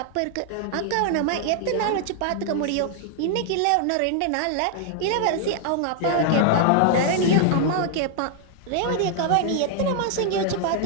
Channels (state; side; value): different; both; correlation 0.00